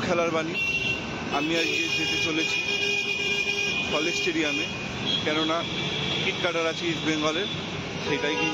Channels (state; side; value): identical; both; correlation 1.00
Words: খেলার বাণী। আমি আজকে যেতে চলেছি কলেজ স্টেডিয়ামে, কেননা টিকিট কাটার আছে ইস্ট বেঙ্গলের, সেটাই